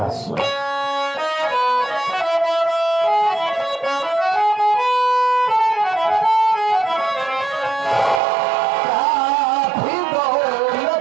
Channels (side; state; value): left; drops out; at 8.2 s